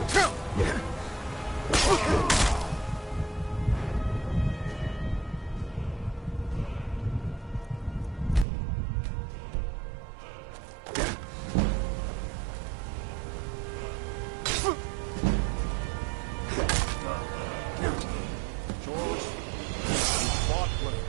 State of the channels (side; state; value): left; drops out; at 8.5 s